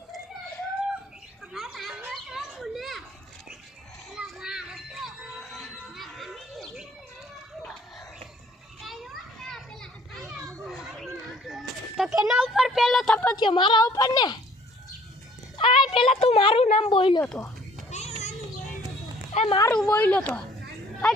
તો કેના ઉપર પેલો થપ્પો થયો? મારા ઉપર ને? આ પેલા તું મારું નામ બોલ્યો તો, એ મારું બોલ્યો તો, આ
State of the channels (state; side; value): normal; both; correlation 0.56